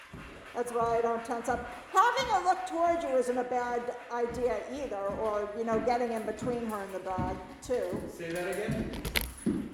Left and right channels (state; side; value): identical; both; correlation 1.00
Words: That's why I don't tense up. Having her look towards you isn't a bad idea either, or, getting in between her and the dog, too. Say that again?